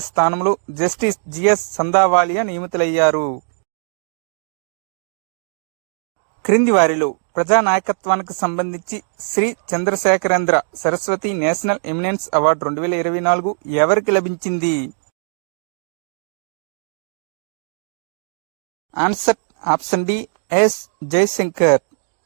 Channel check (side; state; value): left; silent; digital silence